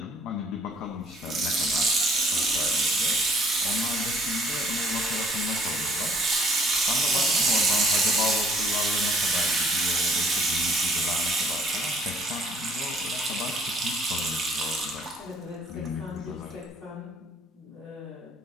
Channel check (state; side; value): normal; both; correlation 0.59